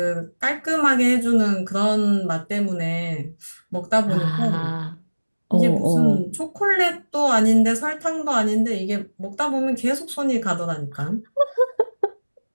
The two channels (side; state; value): both; inverted; correlation -1.00